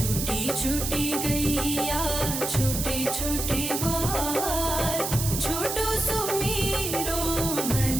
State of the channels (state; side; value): noise; right; hiss, 3 dB below the sound